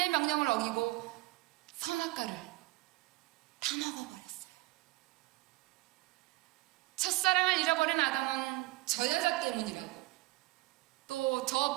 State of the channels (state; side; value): quieter; left; 20.9 dB